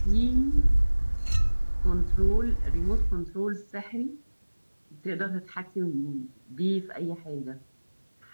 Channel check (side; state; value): both; inverted; correlation -1.00